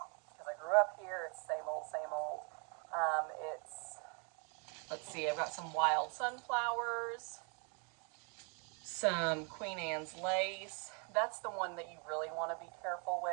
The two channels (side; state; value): left; quieter; 37.2 dB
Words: because I grew up here. It's same old, same old. Let's see, I've got some wild sunflowers, some Queen Anne's lace. That's the one that you really want to be careful